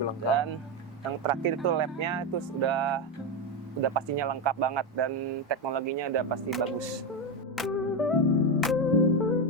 lengkap. Dan yang terakhir itu lab-nya itu udah pastinya lengkap banget dan teknologinya udah pasti bagus.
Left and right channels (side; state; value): both; normal; correlation 0.11